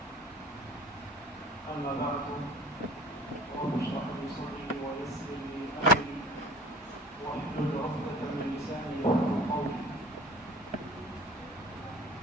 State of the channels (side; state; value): both; normal; correlation 0.45